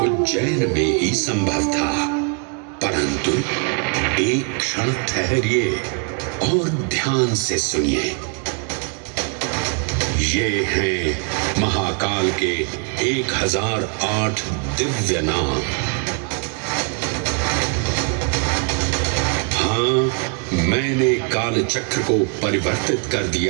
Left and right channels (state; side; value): quieter; left; 36.9 dB